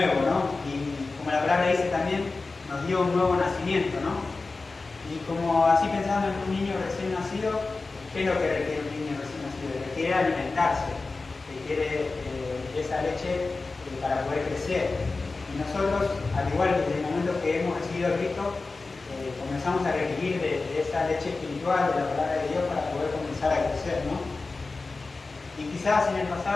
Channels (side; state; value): right; quieter; 3.7 dB